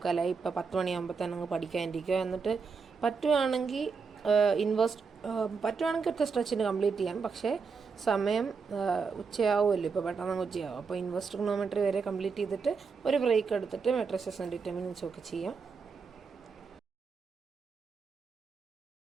ഇപ്പോൾ 10 മണിയാകുമ്പോൾ തന്നെ അങ്ങ് പഠിക്കാനിരിക്കുക. എന്നിട്ട് പറ്റുവാണെങ്കിൽ പറ്റുവാണെങ്കിൽ ഒറ്റ സ്ട്രെച്ചിന് കംപ്ലീറ്റ് ചെയ്യാം. പക്ഷേ സമയം ഉച്ചയാവുമല്ലോ, ഇപ്പോൾ പെട്ടെന്ന് ഉച്ചയാവും. അപ്പോൾ ഇൻവേഴ്സ് ട്രിഗണോമെട്രി വരെ കംപ്ലീറ്റ് ചെയ്തിട്ട് ഒരു ബ്രേക്ക് എടുത്തിട്ട് മെട്രിസസും ഡിറ്റർമിനൻസും ഒക്കെ ചെയ്യാം.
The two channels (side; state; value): left; quieter; 5.2 dB